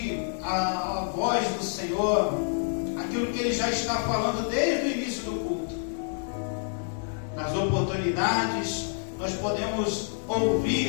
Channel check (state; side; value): silent; right; 59 dB below the other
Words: a voz do Senhor, aquilo que ele já está falando desde o início do culto. Nas oportunidades nós podemos